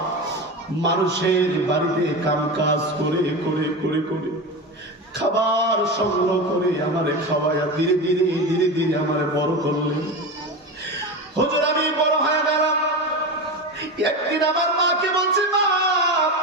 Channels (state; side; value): normal; both; correlation 0.23